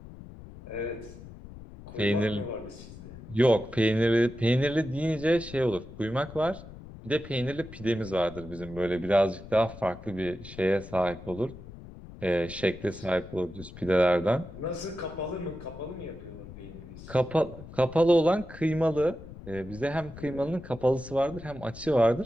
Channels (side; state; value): left; noise; rumble, 15 dB below the sound